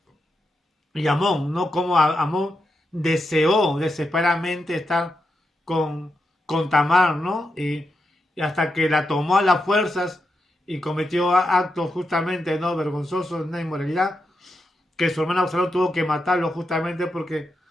Amón, ¿no? Como Amón deseó desesperadamente estar con Tamar, ¿no? Y y hasta que la tomó a las fuerzas y cometió actos justamente no vergonzosos, de inmoralidad, que su hermano Absalón tuvo que matarlo justamente porque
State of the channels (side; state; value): both; normal; correlation 0.86